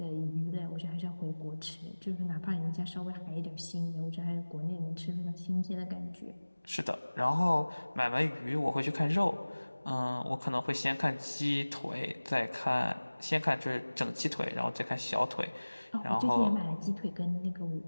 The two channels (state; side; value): inverted; both; correlation -1.00